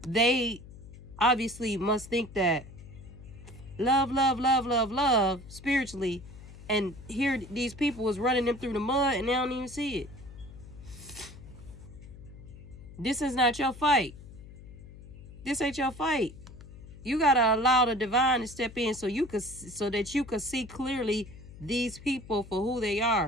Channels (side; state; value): left; noise; hum, 17 dB below the sound